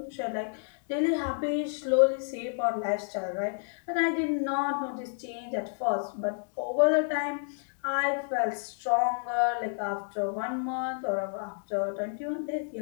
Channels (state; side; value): silent; right; digital silence